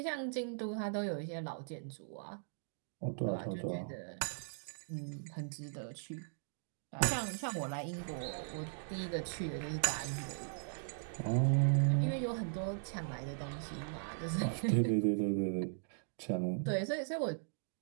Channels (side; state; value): left; silent; digital silence